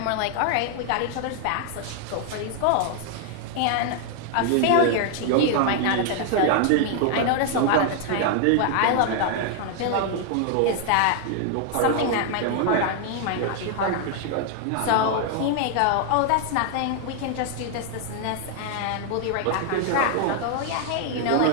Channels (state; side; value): different; both; correlation 0.00